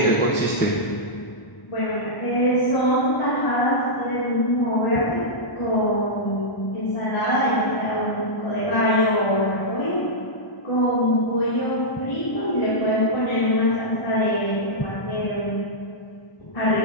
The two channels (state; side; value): late; right; 1.0 ms